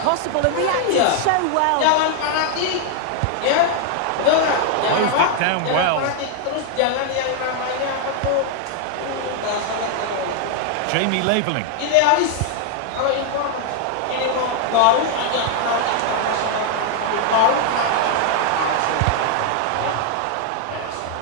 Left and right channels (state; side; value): different; both; correlation 0.00